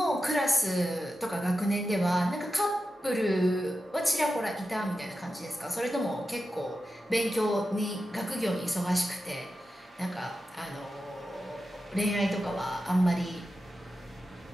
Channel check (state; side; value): normal; both; correlation 0.91